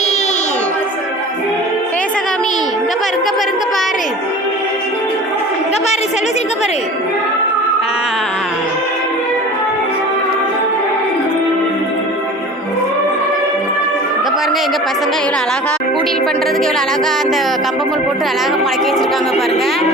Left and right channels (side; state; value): both; normal; correlation 0.40